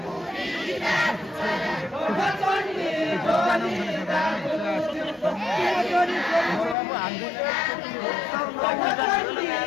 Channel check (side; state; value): right; drops out; at 6.8 s